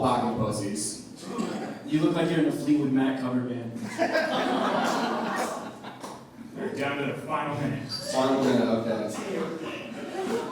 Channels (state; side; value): identical; both; correlation 1.00